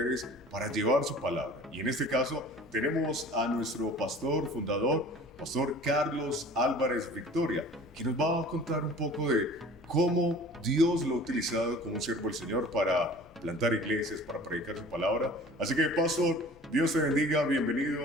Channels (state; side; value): normal; both; correlation 0.45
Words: para llevar su palabra. Y en este caso tenemos a nuestro pastor fundador, Pastor Carlos Álvarez Victoria, que nos va a contar un poco de cómo Dios lo ha utilizado como un siervo del Señor para plantar iglesias, para predicar su palabra. Así que, pastor, Dios te bendiga,